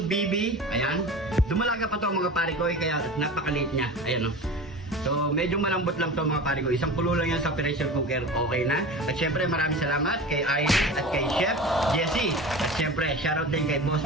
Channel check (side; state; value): both; normal; correlation 0.33